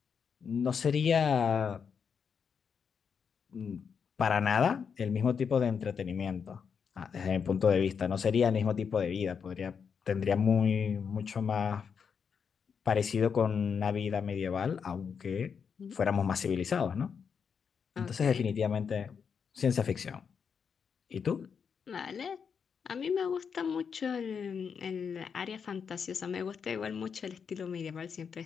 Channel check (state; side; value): quieter; right; 6.5 dB